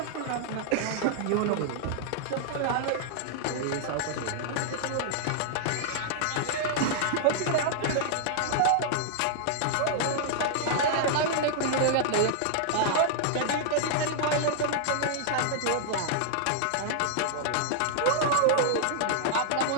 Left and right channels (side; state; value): both; different; correlation -0.01